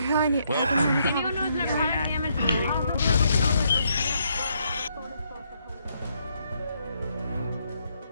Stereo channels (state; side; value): inverted; both; correlation -0.74